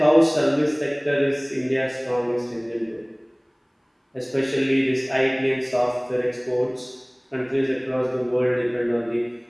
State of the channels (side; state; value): both; identical; correlation 1.00